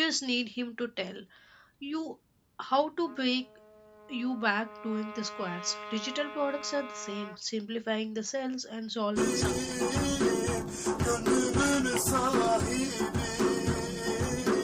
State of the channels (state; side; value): identical; both; correlation 1.00